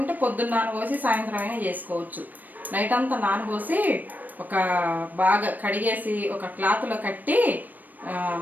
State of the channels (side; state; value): left; late; 0.086 ms